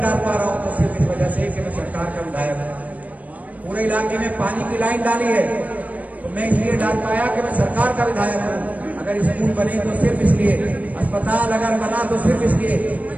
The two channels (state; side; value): late; left; 0.072 ms